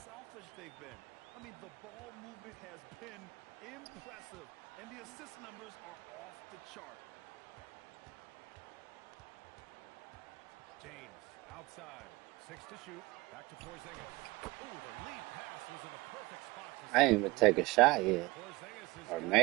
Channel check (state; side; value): quieter; left; 22.2 dB